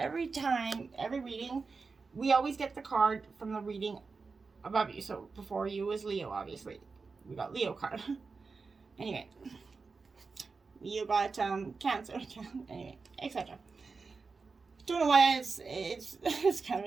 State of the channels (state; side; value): quieter; left; 4.5 dB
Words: time, every reading, we always get the card from the reading above you. So before you was Leo, obviously. We got Leo card. Anyway. You got Cancer. Anyway, etc. Don't know why it's kind of